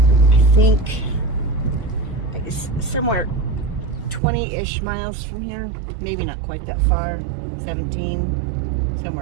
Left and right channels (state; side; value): drops out; left; at 4.2 s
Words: think, somewhere 20-ish miles from here. Maybe not quite that far, 17,